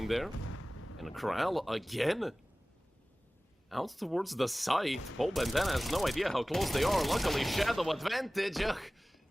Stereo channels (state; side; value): normal; both; correlation 0.98